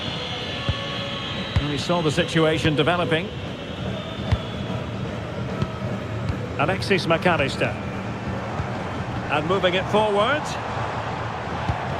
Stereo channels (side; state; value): both; identical; correlation 1.00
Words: We saw the situation developing. Alexis McAllister. And moving it forward.